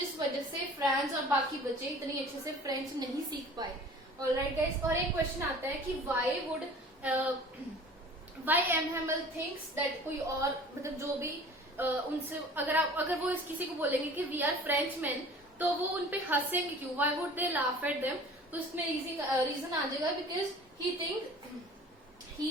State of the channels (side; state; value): both; normal; correlation 0.45